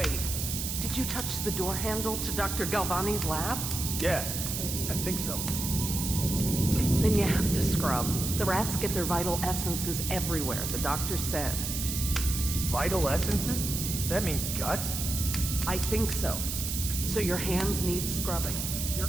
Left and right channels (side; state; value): right; noise; hiss, 3 dB below the sound